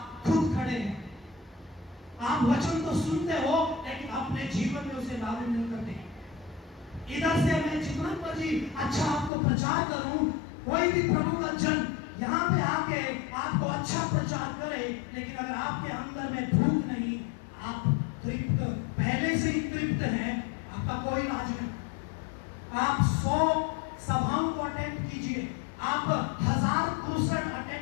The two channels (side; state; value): right; drops out; at 9.3 s